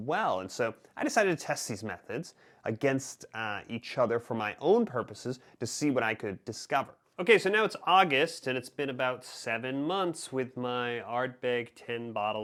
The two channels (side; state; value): both; identical; correlation 1.00